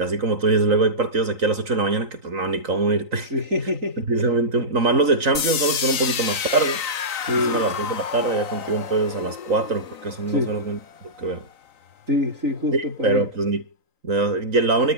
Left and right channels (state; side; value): late; left; 3.9 ms